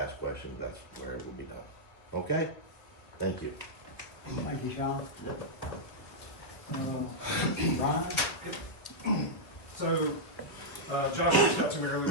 questions, that's where it will be done. Okay? Thank you. Thank you, Sean. Brian? So, Josh reached out to me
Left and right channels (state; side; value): late; right; 1.1 ms